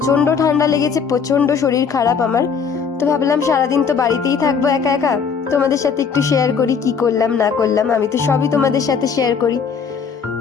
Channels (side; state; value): right; quieter; 6.2 dB